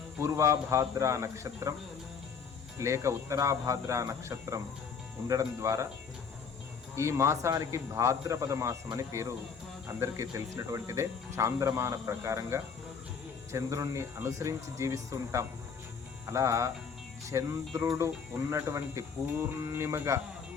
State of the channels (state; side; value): quieter; right; 6.0 dB